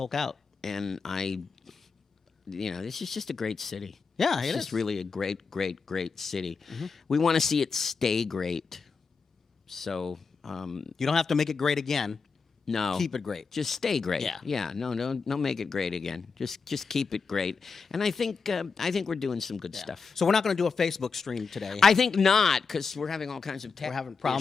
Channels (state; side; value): quieter; right; 5.0 dB